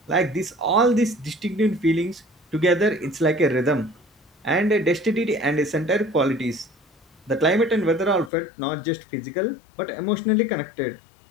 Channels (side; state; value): right; drops out; at 8.3 s